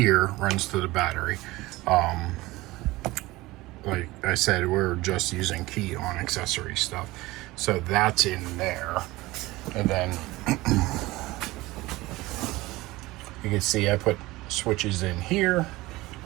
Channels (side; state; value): left; quieter; 19.7 dB